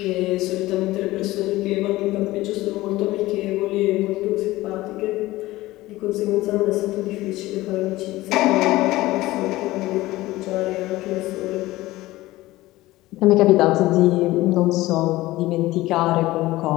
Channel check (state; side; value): quieter; right; 17.9 dB